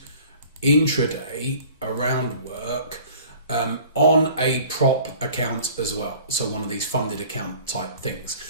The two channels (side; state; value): both; inverted; correlation -0.48